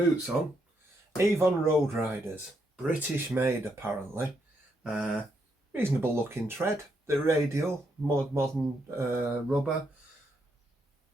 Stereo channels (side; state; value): both; normal; correlation 0.78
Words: on. Avon Road Riders, British made apparently. Reasonable looking tread. The radial, modern rubber.